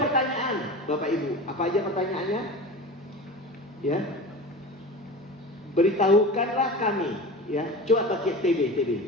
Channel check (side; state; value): both; normal; correlation 0.32